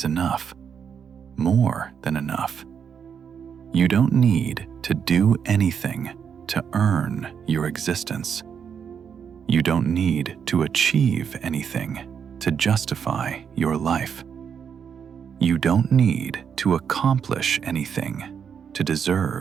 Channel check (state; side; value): quieter; left; 7.3 dB